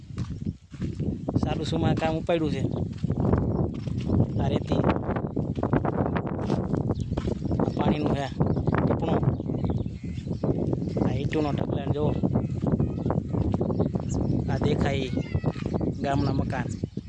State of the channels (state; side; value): identical; both; correlation 1.00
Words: ચાલુ સુમા કામ ઉપાડ્યું છે. આ રેતી આ પાણીનું છે ટીપણું, આ ઈંટુનો ઢગલાને જુઓ. આ દેખાય ગામના મકાન.